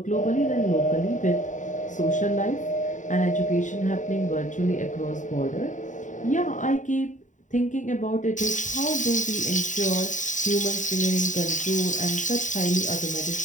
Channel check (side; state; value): right; late; 0.36 ms